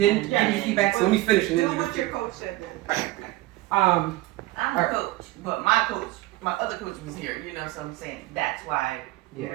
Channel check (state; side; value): quieter; left; 18.2 dB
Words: give me feedback? So let me finish and then do what your coach said then. I'm a coach, but my other coach was here, so I'm saying that's why we're